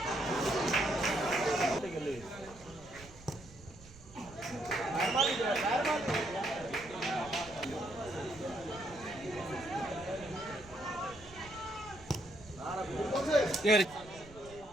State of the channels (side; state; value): right; noise; rumble, 19 dB below the sound